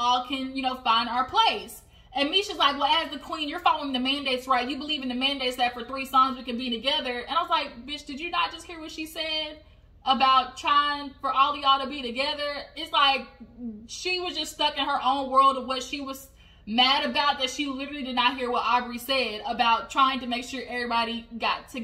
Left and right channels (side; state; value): both; identical; correlation 1.00